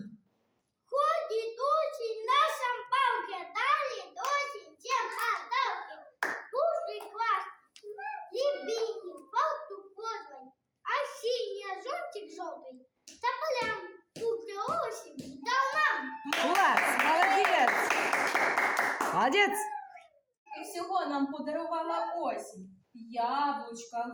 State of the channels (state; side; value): identical; both; correlation 1.00